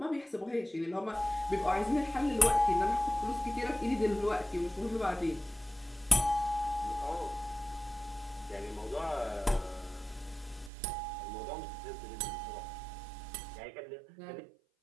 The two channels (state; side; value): drops out; left; at 10.7 s